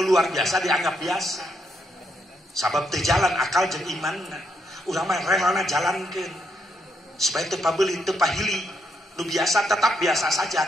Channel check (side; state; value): both; normal; correlation 0.77